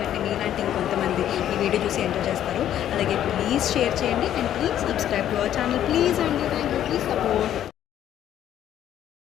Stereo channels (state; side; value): quieter; right; 11.1 dB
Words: మీలాంటి ఇంకొంతమంది ఈ వీడియో చూసి ఎంజాయ్ చేస్తారు. అలాగే ప్లీజ్ షేర్ చేయండి and please subscribe to our channel please అండి. Thank you, please support.